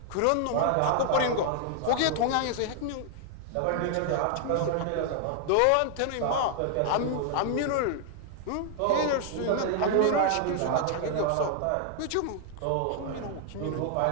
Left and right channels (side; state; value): both; different; correlation 0.00